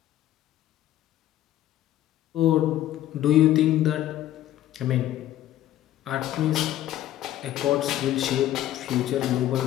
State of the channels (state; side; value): quieter; right; 13.2 dB